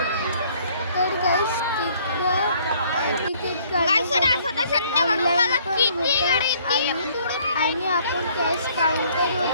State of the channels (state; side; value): inverted; both; correlation -0.61